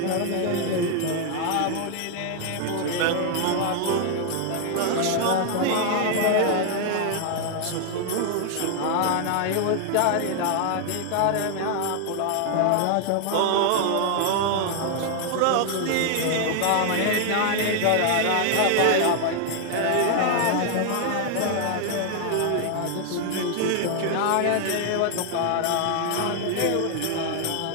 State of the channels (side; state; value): both; different; correlation 0.00